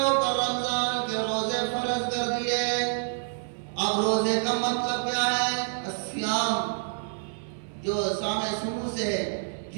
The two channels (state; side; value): silent; left; digital silence